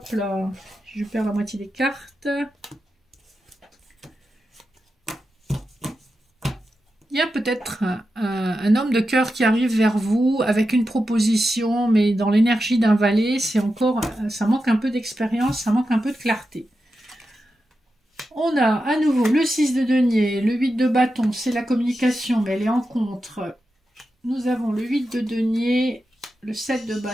là, je perds la moitié des cartes. Il y a peut-être un homme de cœur qui arrive vers vous avec une proposition, mais dans l'énergie d'un valet, c'est encore, ça manque un peu d'expérience, ça manque un peu de clarté. On a à nouveau le 6 de denier, le 8 de bâton, c'est la communication, mais elle est en contre. Nous avons le 8 de denier, le 7 de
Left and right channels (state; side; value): normal; both; correlation 0.90